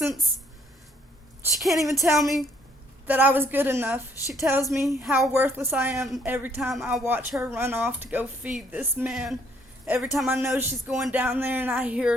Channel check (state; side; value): normal; both; correlation 0.66